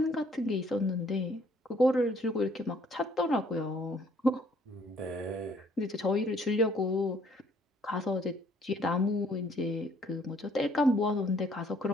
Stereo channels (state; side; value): normal; both; correlation 0.63